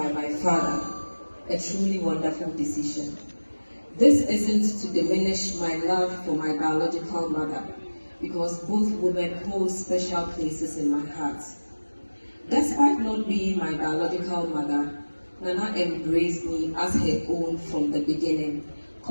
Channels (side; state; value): both; inverted; correlation -1.00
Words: my father, a truly wonderful decision. This isn't to diminish my love for my biological mother, because both women hold special places in my heart. Despite not being my biological mother, Nana embraced me as her own from the beginning,